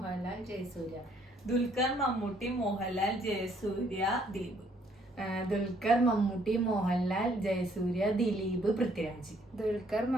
ജയസൂര്യ. ദുൽഖർ മമ്മൂട്ടി മോഹൻലാൽ ജയസൂര്യ ദിലീപ്. ദുൽഖർ മമ്മൂട്ടി മോഹൻലാൽ ജയസൂര്യ ദിലീപ് പൃഥ്വിരാജ്. ദുൽഖർ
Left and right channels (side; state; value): both; normal; correlation 0.65